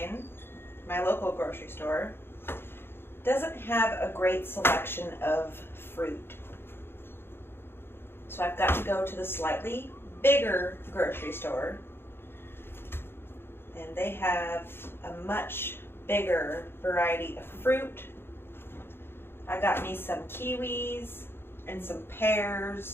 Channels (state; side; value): late; right; 0.11 ms